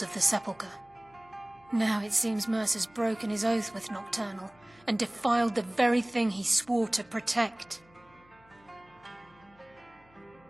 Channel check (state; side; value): noise; left; hum, 30 dB below the sound